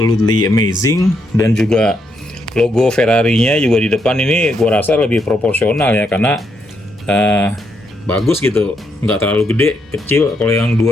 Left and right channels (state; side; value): normal; both; correlation 0.78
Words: amazing, dan juga logo Ferrari-nya juga di depan ini gue rasa lebih proporsional ya, karena bagus gitu, nggak terlalu gede, kecil. Kalau yang